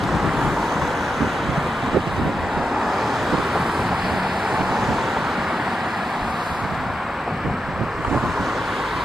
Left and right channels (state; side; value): normal; both; correlation 0.88